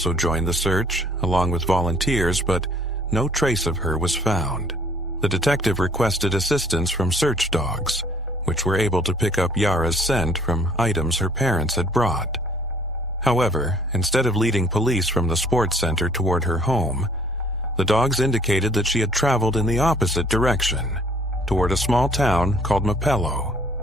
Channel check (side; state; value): both; normal; correlation 0.58